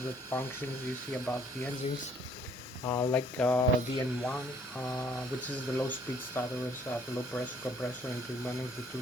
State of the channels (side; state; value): both; normal; correlation 0.61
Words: functions you see about the engines. Like the N1, which is the low speed starter at low pressure compressor and turbine, the